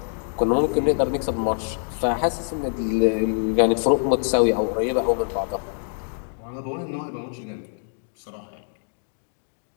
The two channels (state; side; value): silent; right; digital silence